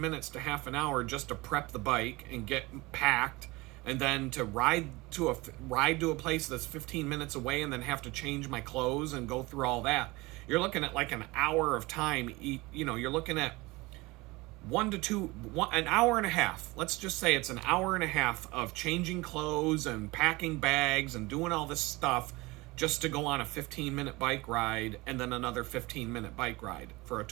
minutes to half an hour just to prep the bike and get packed, and then to ride to a place that's 15 minutes away and then have to change my clothes and go through all that. You're looking at like an hour of time. You're looking at an hour and a half. Let's just say it's an hour and a half of changing clothes and packing bags and doing all this stuff just to go on a 15-minute bike ride and then another 15-minute bike ride for a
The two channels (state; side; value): quieter; left; 22.5 dB